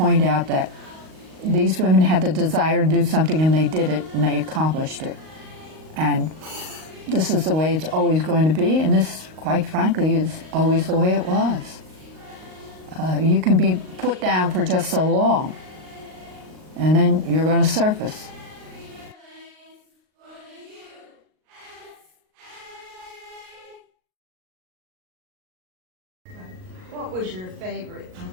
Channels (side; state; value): left; late; 38 ms